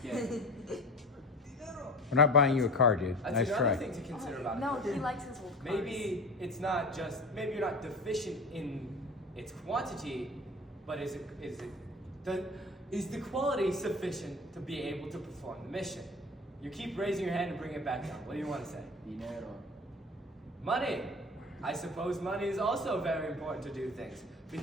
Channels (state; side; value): normal; both; correlation 0.36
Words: it. We're not buying you a car, dude. That's Nice another try. thing to consider about No, equipment. he likes his old cars. Maybe it's not just, maybe you're not deficient in its quantity, but is the quality sufficient to be able to perform the mission? You keep raising your hand and bring it back down. What do you want to say? Dinero. Money. I suppose money is also very important to do things